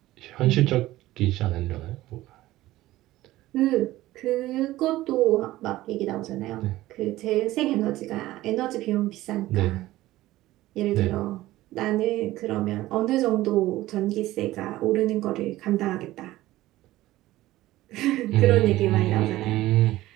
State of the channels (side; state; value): left; quieter; 16.4 dB